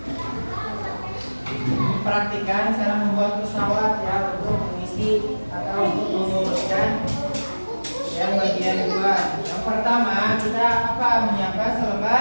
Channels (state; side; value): inverted; both; correlation -1.00